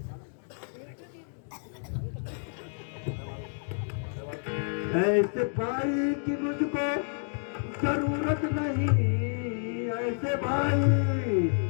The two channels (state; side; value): silent; right; 58 dB below the other